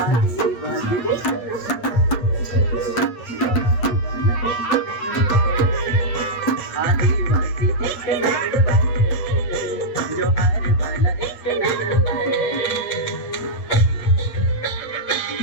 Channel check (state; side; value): late; right; 8.5 ms